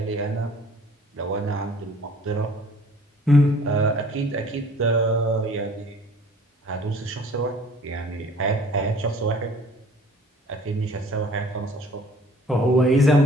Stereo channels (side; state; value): both; normal; correlation 0.52